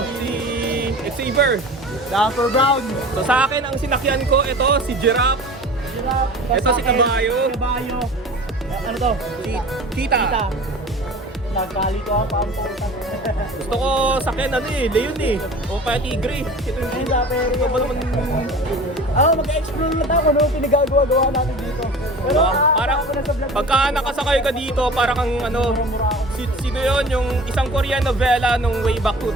Xavier. Dapper Brown. So sa akin ang sinakyan ko, ito si Giraffe. Ito si Kabayo. Kabayo. Ano to? Si Tita. Nagkalito ako pa ang puta. Gusto ko sakyan Leon eh. O kaya Tigre. Ito yung Ay, dapper. ito ba naman? Mag-explore na tayo, ano pinagagawa natin dito. Pero Parang ako na sa vlog. pagka nakasakay ka dito, parang kang sino yun, yung isang Korean novela nung way back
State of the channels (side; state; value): both; normal; correlation 0.40